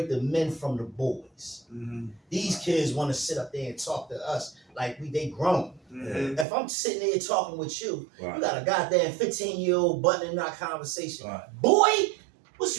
the men from the boys. These kids want to sit up there and talk to us like they grown. If I'm sitting there talking with you, you Right. got a goddamn 15-year-old butting in our conversation. Right. Boy, what's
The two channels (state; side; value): drops out; left; at 6.5 s